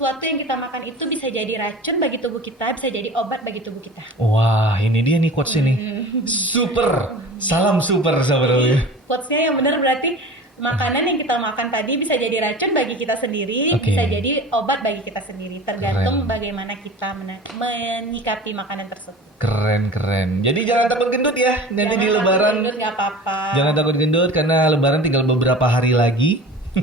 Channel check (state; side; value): normal; both; correlation 0.39